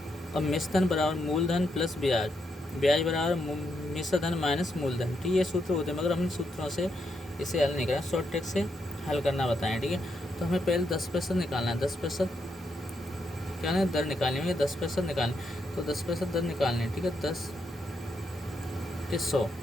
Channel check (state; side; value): normal; both; correlation 0.80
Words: अब मिश्रधन बराबर मूलधन प्लस ब्याज, ब्याज बराबर मिश्रधन माइनस मूलधन, ठीक है। ये सूत्र होते हैं, मगर हमने सूत्रों से इसे हल नहीं करा, शॉर्ट ट्रिक से हल करना बताएं, ठीक है। तो हमें पहले 10% निकालना है। 10% क्या है? दर निकालनी है। 10% निकालनी, तो 10% दर निकालनी है, ठीक है। 10 के 100,